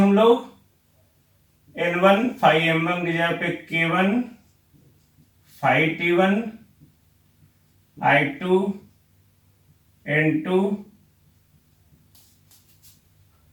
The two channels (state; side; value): identical; both; correlation 1.00